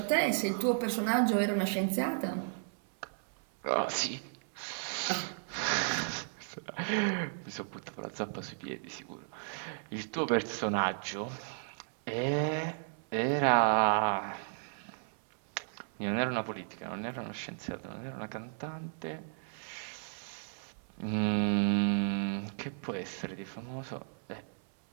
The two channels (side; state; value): left; silent; 55 dB below the other